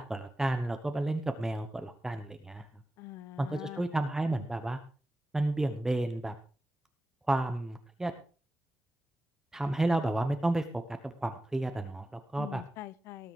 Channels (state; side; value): normal; both; correlation 0.94